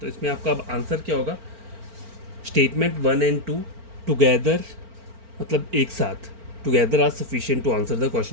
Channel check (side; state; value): left; late; 4.4 ms